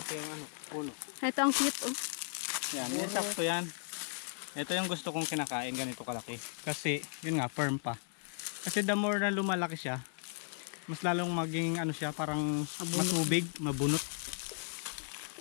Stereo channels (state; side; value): silent; right; digital silence